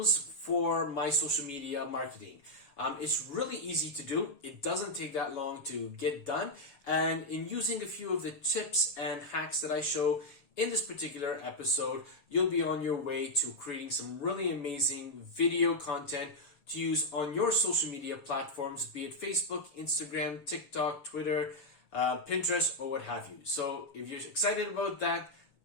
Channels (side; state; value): right; late; 7.0 ms